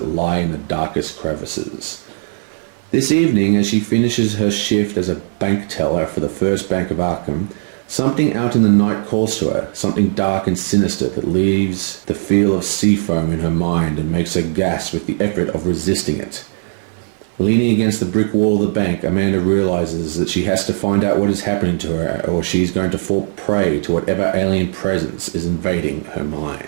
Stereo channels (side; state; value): left; silent; 56 dB below the other